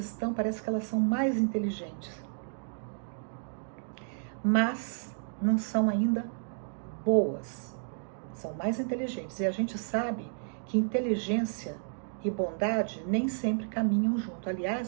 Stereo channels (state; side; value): silent; left; digital silence